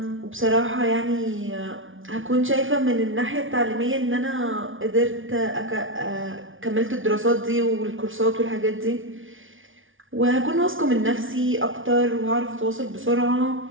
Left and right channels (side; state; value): left; late; 0.57 ms